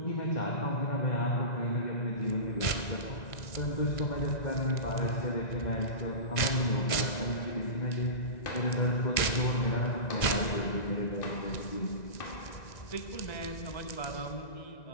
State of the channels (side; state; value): right; late; 1.9 ms